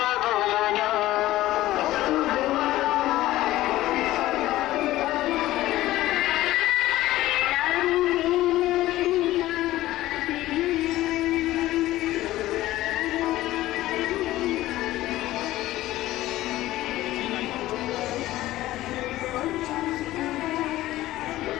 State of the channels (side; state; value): right; quieter; 15.9 dB